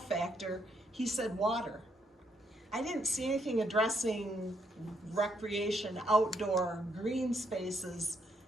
He said water. I didn't see anything addressing recreation, outdoor, green spaces,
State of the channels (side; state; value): both; normal; correlation 0.75